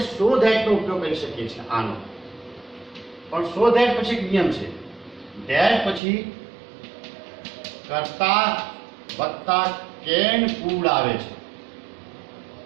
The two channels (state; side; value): drops out; left; at 6.0 s